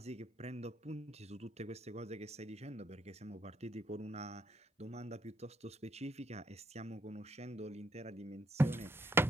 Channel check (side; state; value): both; normal; correlation 0.73